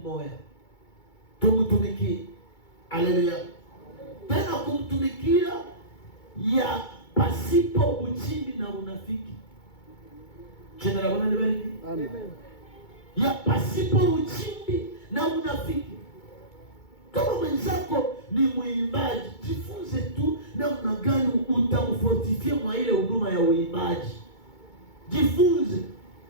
moja, tumtumikie. Haleluya. Tena kumtumikia ya pasipo uchimbi na unafiki. Jina la Bwana libarikiwe. Amen. Ya pasipo uchimbi na unafiki. Kama mwenzako ni mwimbaji, jifunze tu namna gani utamfortifie mwa ile huduma ya uimbaji. Jifunze.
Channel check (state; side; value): late; right; 2.2 ms